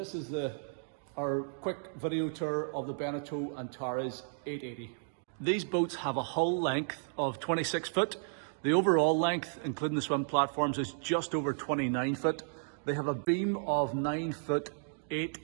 is our quick video tour of the Beneteau Antares 8.80. These boats have a hull length of 26 foot. The overall length, including the swim platforms, is just over 29 foot. They have a beam of 9 foot 8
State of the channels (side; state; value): left; silent; digital silence